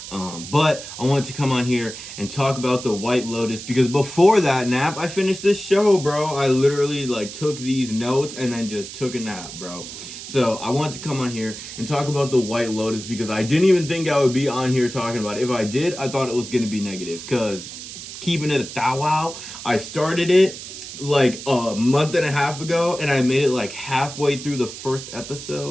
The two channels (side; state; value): right; noise; hiss, 11 dB below the sound